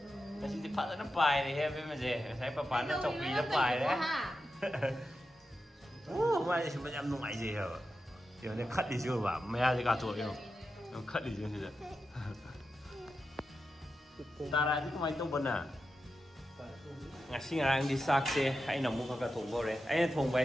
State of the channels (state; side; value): normal; both; correlation 0.89